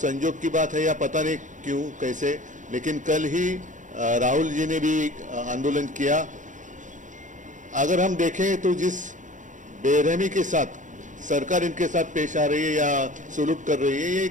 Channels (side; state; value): left; late; 0.37 ms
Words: की बात है या पता नहीं क्यों कैसे, लेकिन कल ही राहुल जी ने भी आंदोलन किया। अगर हम देखें तो जिस बेरहमी के साथ सरकार इनके साथ पेश आ रही है या सुलूक कर रही है, ये